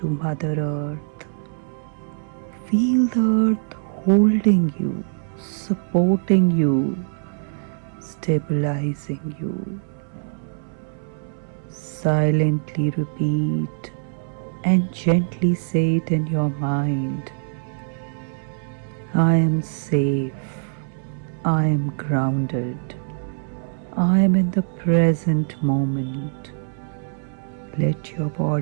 Mother Earth. Feel the earth holding you, supporting you, stabilizing you. Silently repeat and gently say it in your mind. I am safe. I am grounded. I am in the present moment. Let your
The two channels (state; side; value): silent; left; 63 dB below the other